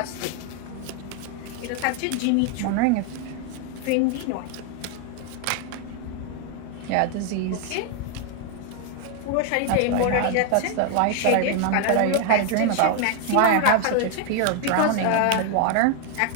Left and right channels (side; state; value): both; different; correlation 0.01